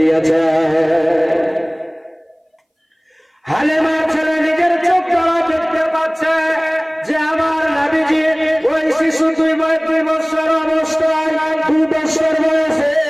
হালেমার ছেলে নিজের চোখ দ্বারা দেখতে পাচ্ছে যে আমার নবীজি ওই শিশু 2 বছর অবস্থায়, 2 বছর বয়সে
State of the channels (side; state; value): both; identical; correlation 1.00